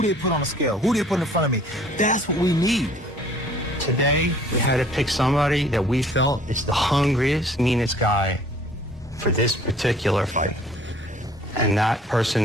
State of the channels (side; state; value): both; normal; correlation 0.55